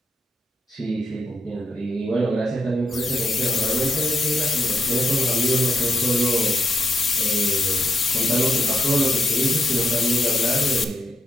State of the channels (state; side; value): normal; both; correlation 0.84